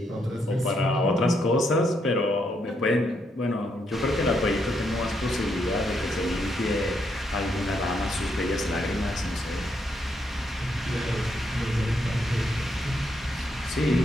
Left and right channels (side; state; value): both; normal; correlation 0.77